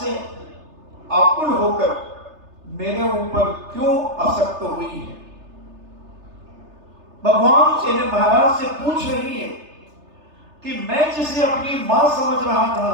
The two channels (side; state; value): left; late; 3.3 ms